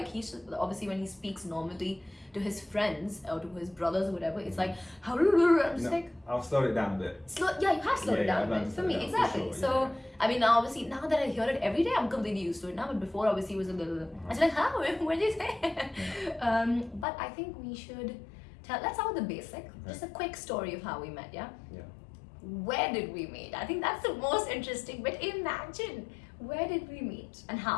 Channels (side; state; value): right; drops out; at 17.1 s